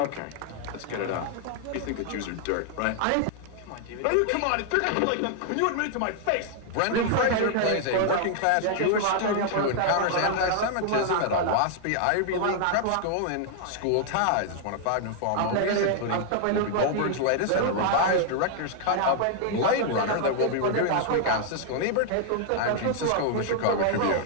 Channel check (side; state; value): both; different; correlation 0.00